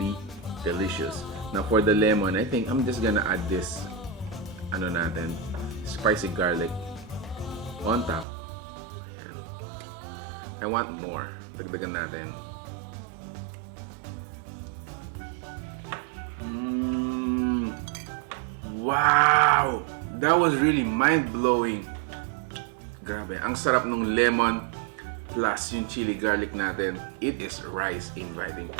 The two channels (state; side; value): drops out; left; at 8.2 s